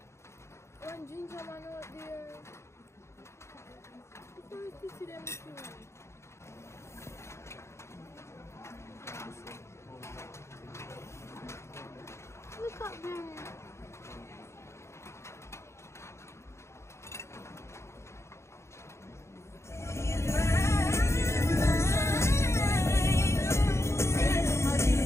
to see them too. Look up there.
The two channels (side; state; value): right; late; 0.13 ms